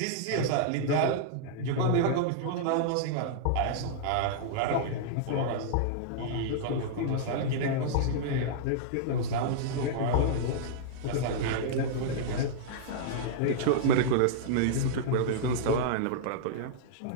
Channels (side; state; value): both; different; correlation -0.02